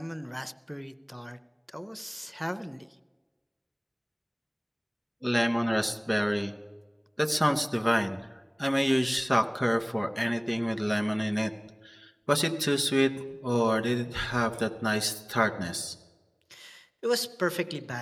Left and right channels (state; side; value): identical; both; correlation 1.00